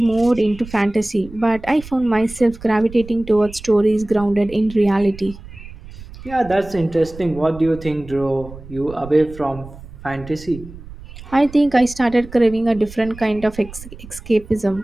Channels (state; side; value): noise; right; rumble, 16 dB below the sound